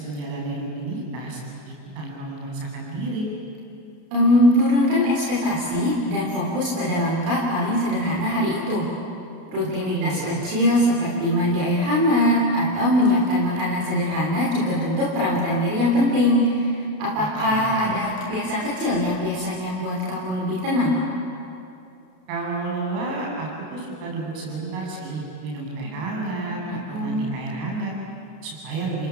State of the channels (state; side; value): late; left; 32 ms